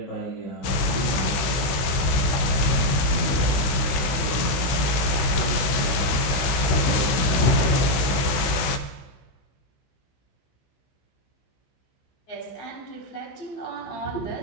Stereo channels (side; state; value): right; late; 16 ms